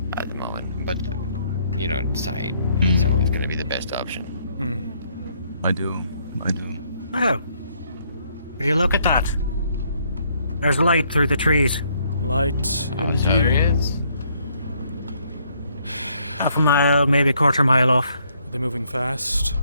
at the moment. But, you know, side, it's always going to be the best option. I do. Oh. Will you look at that? There's light through the trees. Light, Oh, so there indeed. is. Half a mile, maybe a quarter mile off. Are they moving fast?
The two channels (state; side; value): inverted; both; correlation -0.69